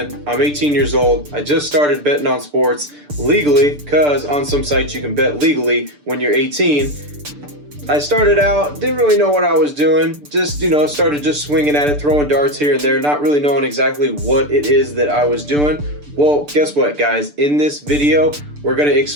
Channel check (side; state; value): left; late; 6.8 ms